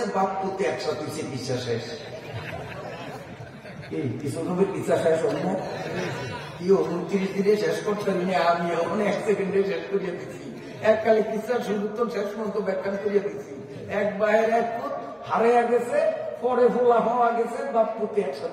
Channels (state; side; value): identical; both; correlation 1.00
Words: বাপ পুতে একসাথে চিকিৎসা শেষ। এই ইউসুফ নবীর চিকিৎসা শেষ হল না? কি 29 দিনে শেষ করতে পারি না, আমি 1 সেকেন্ডে শেষ করিয়ে দিচ্ছি। এককালে চিকিৎসা শুরু তো শেষ পর্যন্ত ব্যাখ্যান করিয়ে দিচ্ছি। 1 বাহের 1 ফুট হারিয়ে গেছে, পরে ফোলা পাওয়া গেছে, বাপ পুতে